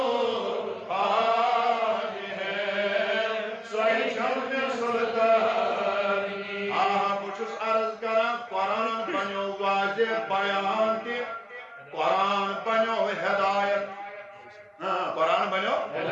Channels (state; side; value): identical; both; correlation 1.00